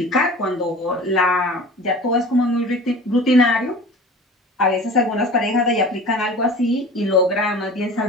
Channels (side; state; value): both; normal; correlation 0.39